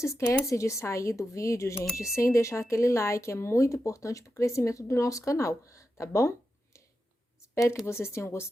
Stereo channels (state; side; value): normal; both; correlation 0.89